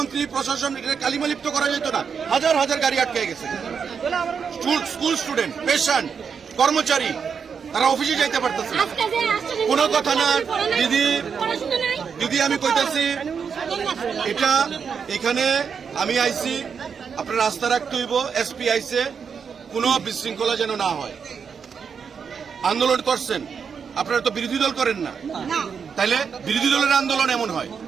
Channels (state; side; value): quieter; left; 6.4 dB